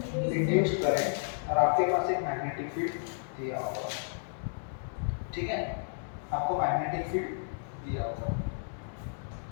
Induced current. और आपके पास एक मैग्नेटिक फील्ड दिया होगा। ठीक है, आपको मैग्नेटिक फील्ड दिया होगा।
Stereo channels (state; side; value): silent; right; digital silence